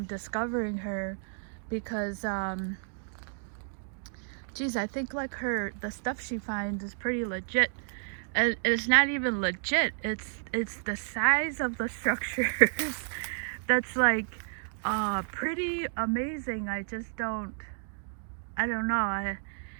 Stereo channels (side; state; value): left; silent; digital silence